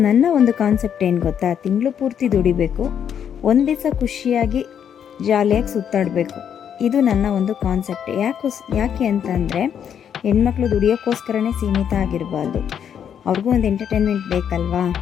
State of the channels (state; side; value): quieter; right; 8.6 dB